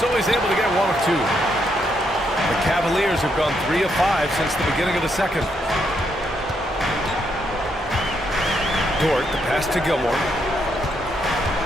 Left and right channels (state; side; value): normal; both; correlation 0.77